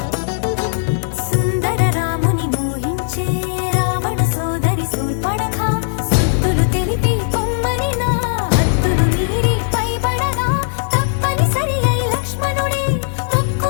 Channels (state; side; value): silent; right; digital silence